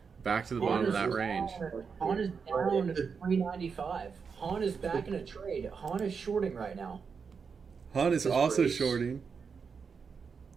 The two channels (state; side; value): quieter; left; 5.8 dB